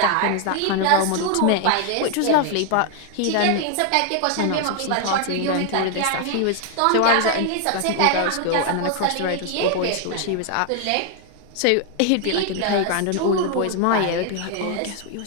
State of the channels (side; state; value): both; different; correlation 0.00